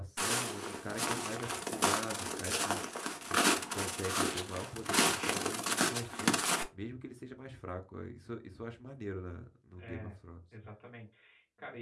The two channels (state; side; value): identical; both; correlation 1.00